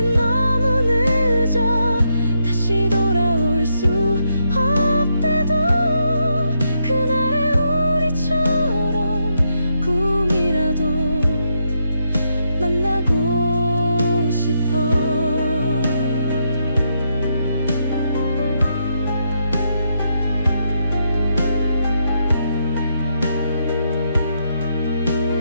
너무 늦어. 다시 돌아올 수 없대도 그날의 우리처럼 꿈이라도 만나고 싶어.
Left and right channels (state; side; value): inverted; both; correlation -0.79